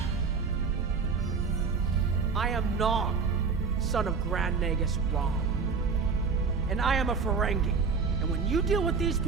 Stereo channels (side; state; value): left; quieter; 5.2 dB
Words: I am Nog, son of Grand Nagus Rom. And I am a Ferengi. And when you deal with these